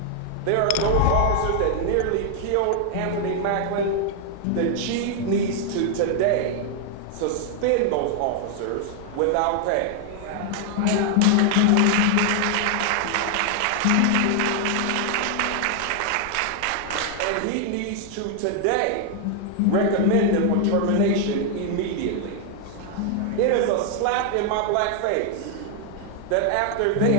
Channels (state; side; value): different; both; correlation 0.00